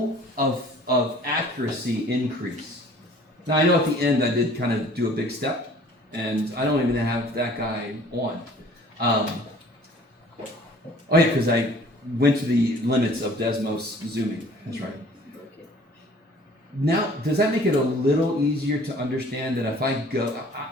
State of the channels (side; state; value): both; normal; correlation 0.52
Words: of accuracy increase? Now, I know at the end I did kind of do a big step, and I don't even have that guy on. Oh, yeah, because I went to the limits of Desmos zooming. That's right. Now, does that make it a little easier to understand that if I go,